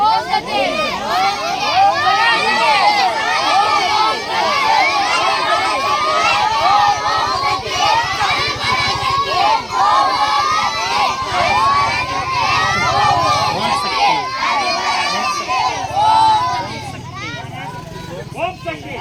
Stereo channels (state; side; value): identical; both; correlation 1.00